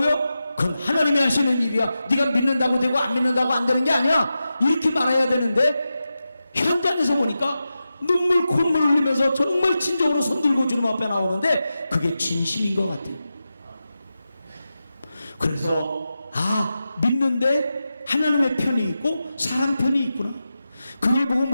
그건 하나님이 하시는 일이야. 네가 믿는다고 되고 안 믿는다고 안 되는 게 아니야. 이렇게 말해야 되는데 현장에서 보니까 눈물 콧물 흘리면서 정말 진정으로 손들고 주님 앞에 나오는데 그게 진심인 것 같아요. 그래서 믿는데 하나님의 편이 있고 사람 편이 있구나. 그걸 보고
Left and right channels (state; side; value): inverted; both; correlation -0.91